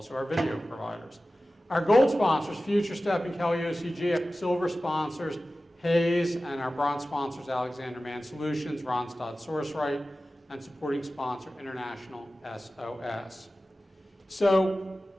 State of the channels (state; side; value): normal; both; correlation 0.95